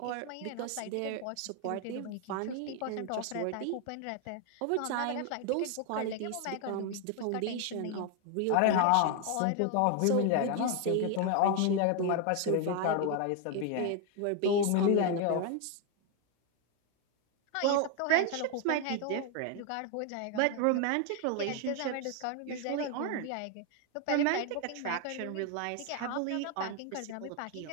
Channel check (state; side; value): different; both; correlation 0.01